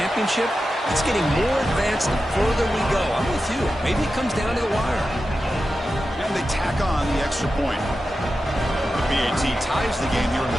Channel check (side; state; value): both; normal; correlation 0.91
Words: it's getting more advanced the further we go. I'm with you. Maybe it comes down to the wire. And they tack on the extra point. BAT ties the game here in the